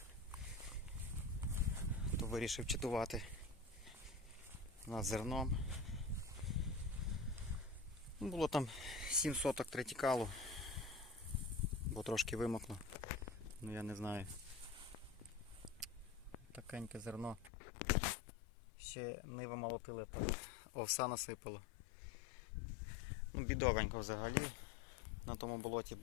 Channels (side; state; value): right; drops out; at 17.5 s